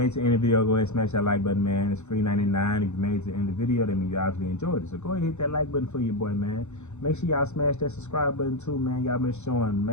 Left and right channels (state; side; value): late; right; 0.83 ms